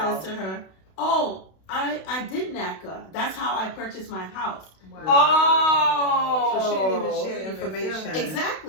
says to her, "Oh, I did NACA. That's how I purchased my house." Wow. Oh. So she didn't even share the information.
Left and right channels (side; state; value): right; late; 32 ms